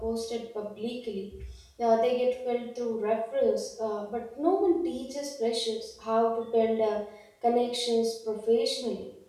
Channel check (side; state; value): both; identical; correlation 1.00